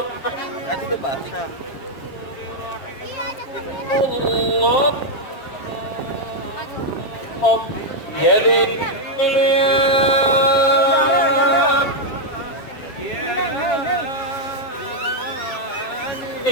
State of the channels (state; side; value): late; right; 7.5 ms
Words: Tadi udah basah. Allah. Oh, jadi